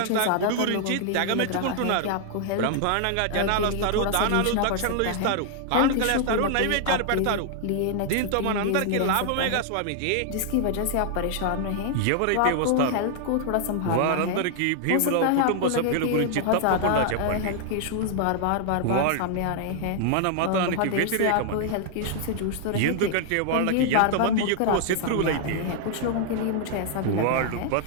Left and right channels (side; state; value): both; different; correlation -0.01